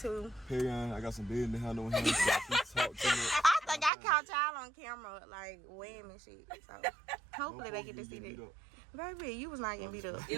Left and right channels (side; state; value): left; drops out; at 3.9 s